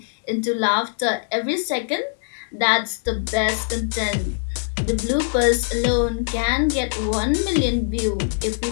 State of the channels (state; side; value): silent; right; digital silence